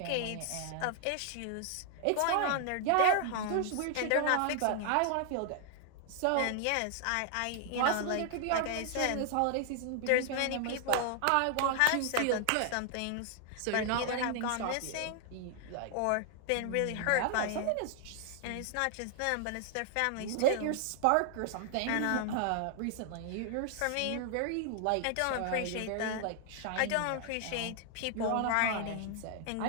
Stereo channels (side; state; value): both; different; correlation 0.00